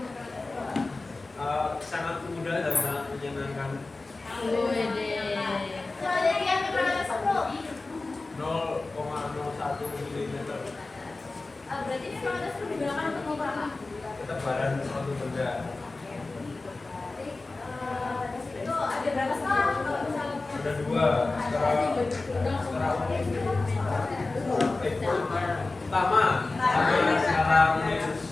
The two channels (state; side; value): quieter; right; 3.4 dB